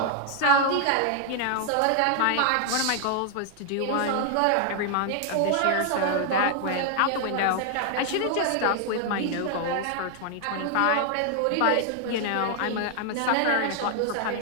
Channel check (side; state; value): both; different; correlation 0.00